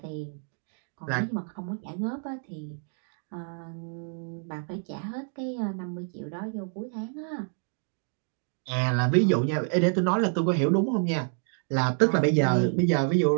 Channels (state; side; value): silent; left; 56 dB below the other